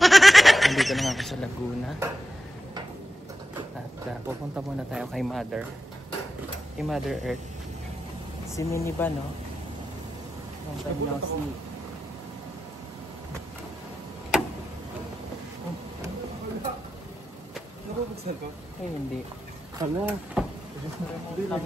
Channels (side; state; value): both; normal; correlation 0.91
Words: Andito na nga ako sa Laguna. At pupunta muna tayo kay Mother. Kay Mother Earth. Si Minnie ba, no? Long time no see. Nakabuksan ko? Eh, hindi. Hala. Hindi lang